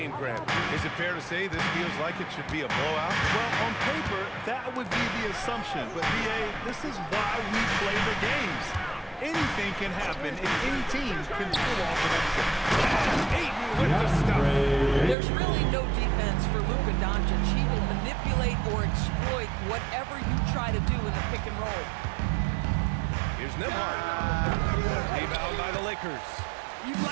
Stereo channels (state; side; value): drops out; left; at 15.2 s